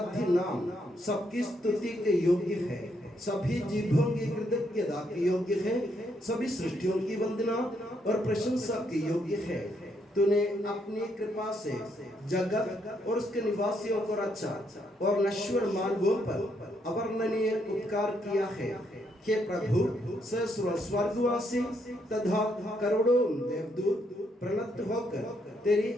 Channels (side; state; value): both; normal; correlation 0.75